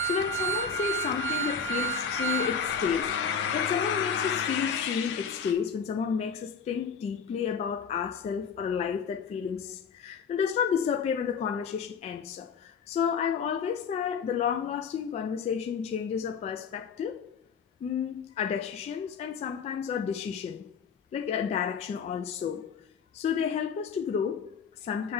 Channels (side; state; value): right; quieter; 5.8 dB